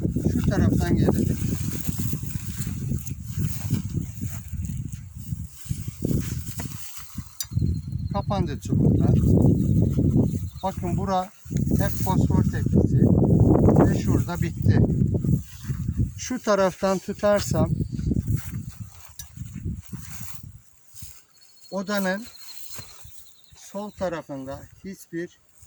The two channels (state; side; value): identical; both; correlation 1.00